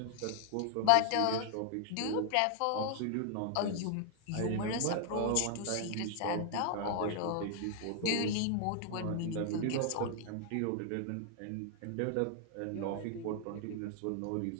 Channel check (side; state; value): both; different; correlation 0.00